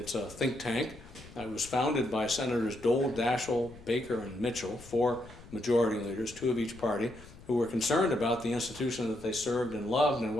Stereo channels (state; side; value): noise; left; rumble, 19 dB below the sound